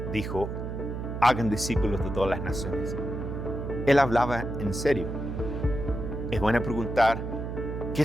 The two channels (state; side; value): noise; right; hum, 5 dB below the sound